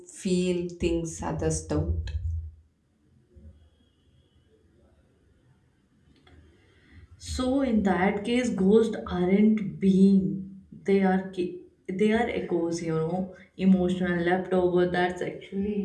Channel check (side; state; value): both; identical; correlation 1.00